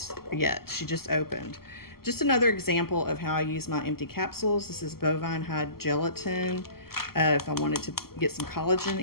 yet. She just opened. Just another example of how I use my empty capsules. This is bovine hide gelatin. If I wanted to get some collagen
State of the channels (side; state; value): right; late; 0.94 ms